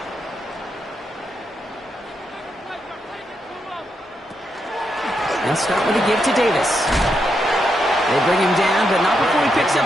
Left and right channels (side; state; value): both; normal; correlation 0.82